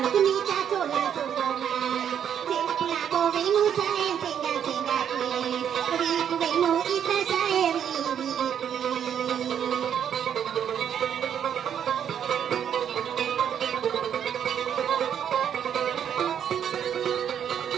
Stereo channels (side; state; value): left; quieter; 8.8 dB